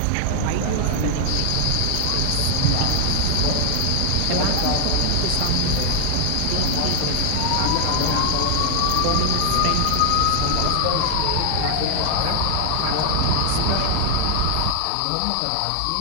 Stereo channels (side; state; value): both; different; correlation 0.00